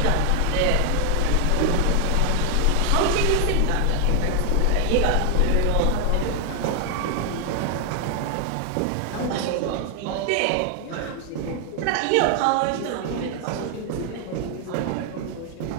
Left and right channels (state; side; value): different; both; correlation 0.00